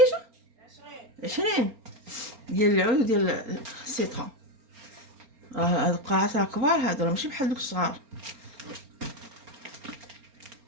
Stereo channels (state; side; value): late; left; 4.3 ms